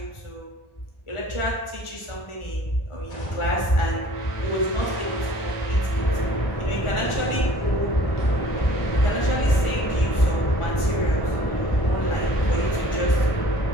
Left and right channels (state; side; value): late; right; 1.4 ms